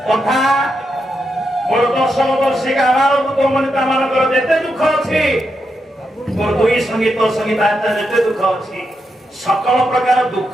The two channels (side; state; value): both; normal; correlation 0.84